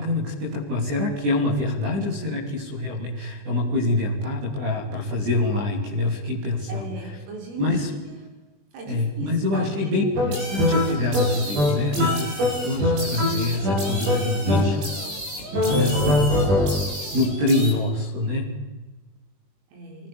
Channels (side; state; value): left; late; 20 ms